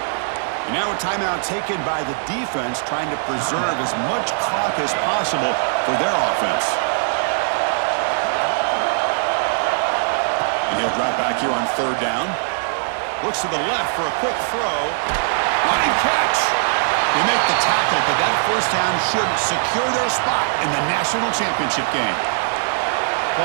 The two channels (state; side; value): silent; left; 65 dB below the other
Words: And now a timeout taken by the defense, trying to preserve as much clock as possible for their offense. And he'll drop back here on 3rd down. Looks to the left for a quick throw. Running catch. They make the tackle, but that first down should secure their spot in the national championship game.